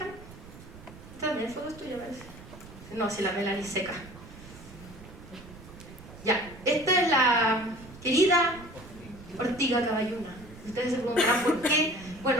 Esta también foto es tuya, parece. No, si la Melanie seca. Ya, esta es la querida ortiga caballuna. Ustedes se preguntarán por qué.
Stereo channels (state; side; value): noise; right; rumble, 17 dB below the sound